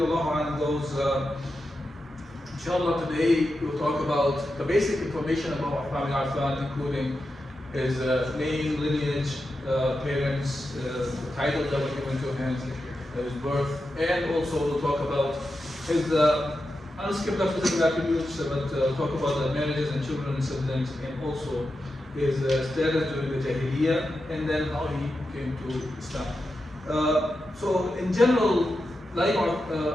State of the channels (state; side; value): normal; both; correlation 0.89